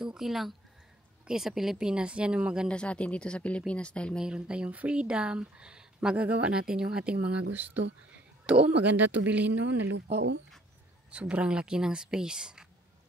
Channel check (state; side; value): normal; both; correlation 0.61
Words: okay lang. Okay, sa Pilipinas, yan yung maganda sa atin dito sa Pilipinas dahil mayroon tayong freedom. Magagawa natin yung ating mga gusto. Ito, oh, maganda to bilhin, no, na lupa, oh. Sobrang laki ng space.